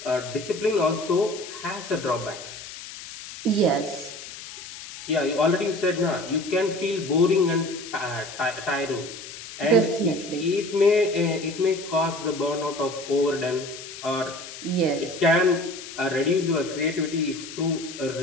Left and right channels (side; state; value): left; noise; hiss, 13 dB below the sound